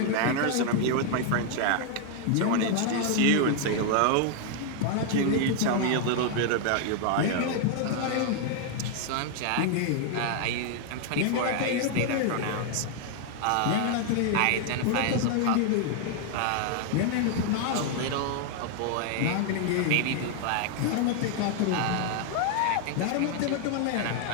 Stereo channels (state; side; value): different; both; correlation 0.00